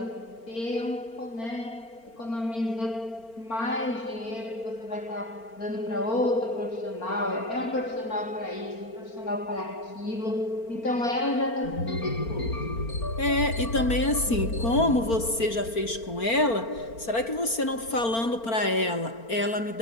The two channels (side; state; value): right; late; 4.4 ms